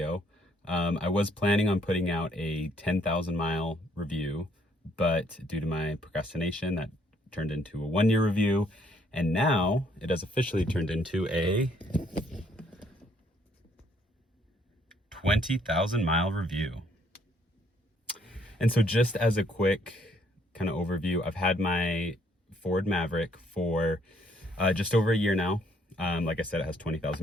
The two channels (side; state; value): both; normal; correlation 0.67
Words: I was planning on putting out a 10,000 mile review, but due to my procrastination, that turned into a 1 year review. And now it has officially turned into a 20,000 mile review. And so just as a quick kind of overview, I've had my Ford Maverick for just over a year now. Like I said, it has